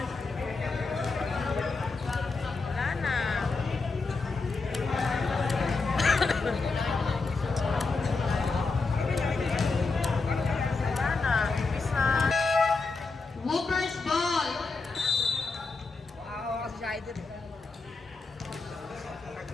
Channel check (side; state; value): right; quieter; 4.0 dB